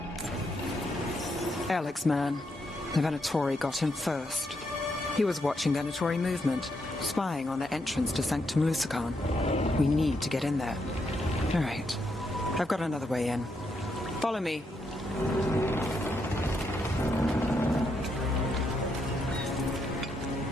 Alex, man. The Venatori got him first. He was watching Venatori movement, spying on the entrance to Sanctum Lusican. We need to get in there. All right. I've got another way in. Follow me.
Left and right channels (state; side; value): normal; both; correlation 0.79